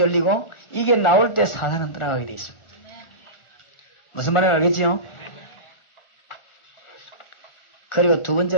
이게 나올 때 사단은 떠나가게 되어 있습니다. 무슨 말인지 알겠지요? 그리고 두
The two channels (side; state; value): right; late; 1.4 ms